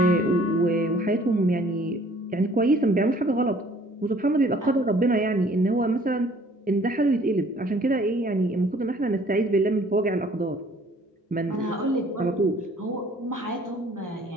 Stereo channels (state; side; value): normal; both; correlation 0.56